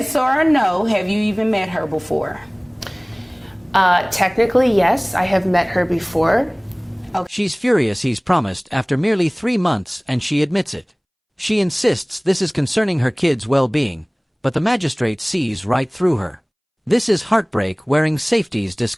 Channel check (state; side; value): identical; both; correlation 1.00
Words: or a no. Have you even met her before? Technically, yes, I have met her before. She's furious he's promised after merely 3 months and she admits it. She insists this is concerning her kids' well-being, but the magistrate sees right through her. This is heartbreak wearing safety's